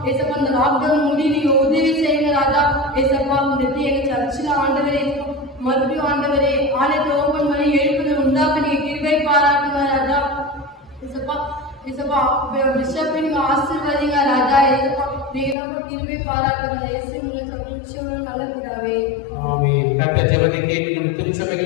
ஏசப்பா, இந்த லாக்டவுன் முடி நீங்க உதவி செய்யுங்க ராஜா. ஏசப்பா, இந்த எங்க சர்ச்சில் ஆண்டவரே மறுபடியும் ஆண்டவரே ஆலயத்தை ஓபன் பண்ணி எழுப்புதல் உண்டாக்க நீங்க கிருபை பாராட்டுங்க ராஜா. ஏசப்பா, ஏசப்பா, பிஷப்பை நீங்க ஆசீர்வதிங்க ராஜா. ஏசப்பா, நீங்க நம்ம கிருபை பாராட்டுங்க. இயேசு சொல்லுங்க நல்ல பிதாவே, ஆமென். கர்த்தர் ஜெபத்தை கேட்டு நம்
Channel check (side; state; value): right; drops out; at 15.6 s